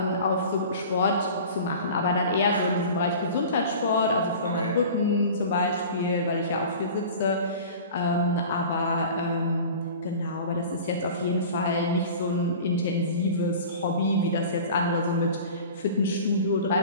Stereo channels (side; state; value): both; inverted; correlation -0.39